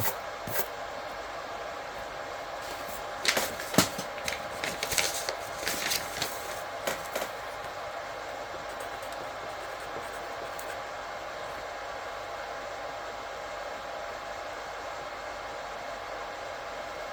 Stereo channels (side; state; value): both; identical; correlation 1.00